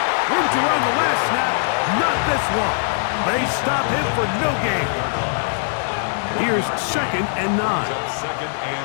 Room to run the last snap, not this one. They stop him for no gain. Here's 2nd and 9. 2nd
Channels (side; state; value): right; silent; digital silence